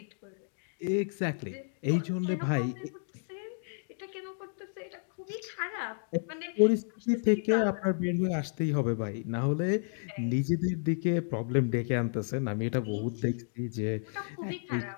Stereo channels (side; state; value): right; silent; digital silence